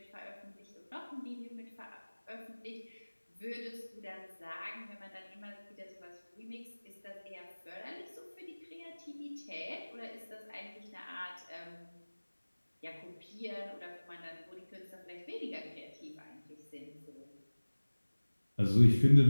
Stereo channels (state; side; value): inverted; both; correlation -1.00